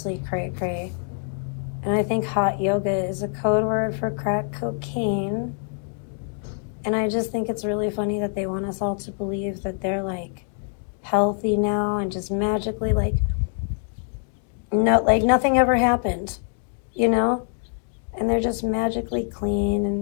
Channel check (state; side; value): silent; right; 61 dB below the other